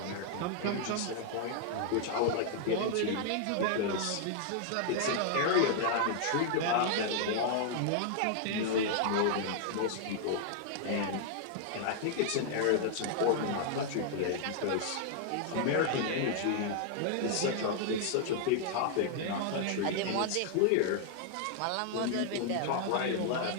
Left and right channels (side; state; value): both; different; correlation 0.00